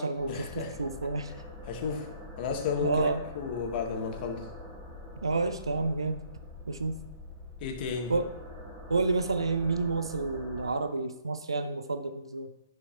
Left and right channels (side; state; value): both; inverted; correlation -0.67